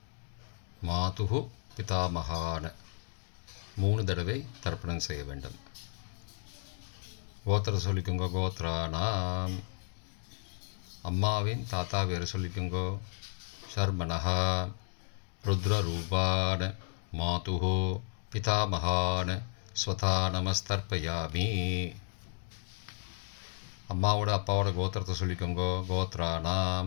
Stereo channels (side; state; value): right; silent; digital silence